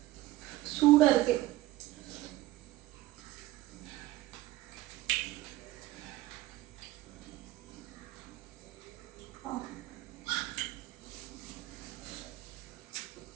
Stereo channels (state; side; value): quieter; left; 16.8 dB